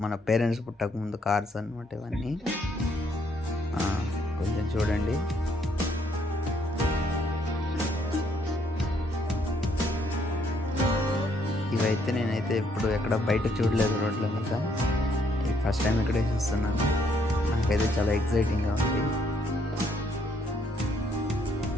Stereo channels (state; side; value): normal; both; correlation 0.70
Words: మన పేరెంట్స్ పుట్టకముందు కార్స్ అనమాట ఇవన్నీ. కొంచెం చూడండి. ఇవైతే నేనైతే ఇప్పుడు ఎక్కడ బయట చూడలేదు రోడ్ల మీద. ఫస్ట్ టైం ఇక్కడే చూస్తున్నాను. నాకైతే చాలా ఎక్సైటింగ్గా ఉంది.